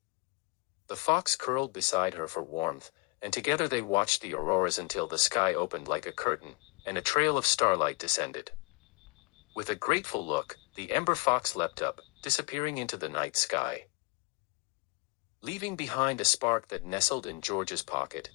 The fox curled beside her for warmth, and together they watched the auroras until the sky opened like a curtain, and a trail of starlight descended. With a grateful look, the ember fox leapt up, disappearing into the night sky, leaving behind a spark that nestled in Georgia's pocket,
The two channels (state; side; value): quieter; right; 28.0 dB